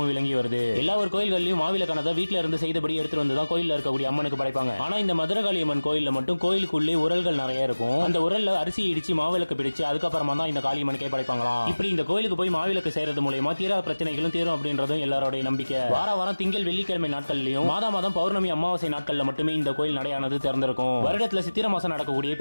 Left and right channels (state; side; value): inverted; both; correlation -1.00